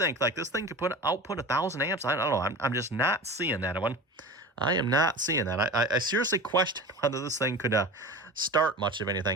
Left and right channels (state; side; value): normal; both; correlation 0.33